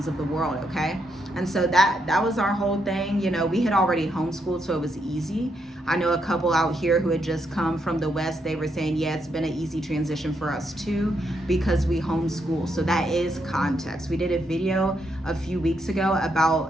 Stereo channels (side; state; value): both; normal; correlation 0.79